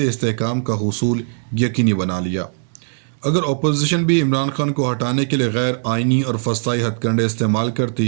استحکام کا حصول یقینی بنا لیا۔ اگر اپوزیشن بھی عمران خان کو ہٹانے کے لیے غیر آئینی اور فسطائی ہتھ کنڈے استعمال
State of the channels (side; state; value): left; silent; digital silence